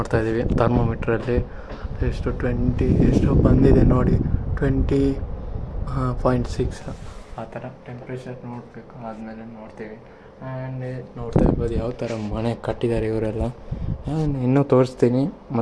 ಇದ್ದೀವಿ ಥರ್ಮೋಮೀಟ್ರಲ್ಲಿ. ಎಷ್ಟು ಬಂದಿದೆ ನೋಡಿ, 20.6 ಆ ಥರ ಟೆಂಪ್ರೇಚರ್ ನೋಡಬೇಕು. ಆದಮೇಲೆ ನೋಡ್ತೀವಿ. ಆ್ಯಂಡ್ ನೋಡ್ತಾ ಇರ್ಬೋದು ಯಾವ ಥರ ಮನೆ ಕಟ್ಟಿದ್ದಾರೆ ಇವರೆಲ್ಲ. ಆ್ಯಂಡ್ ಇನ್ನೂ ತೋರಿಸ್ತೀನಿ,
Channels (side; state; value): both; identical; correlation 1.00